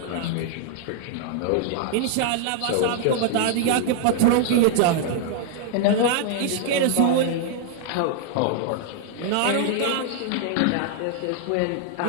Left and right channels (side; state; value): both; different; correlation 0.00